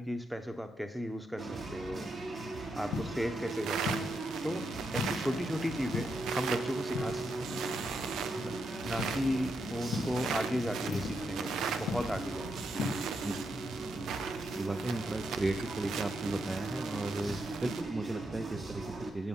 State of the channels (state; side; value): normal; both; correlation 0.82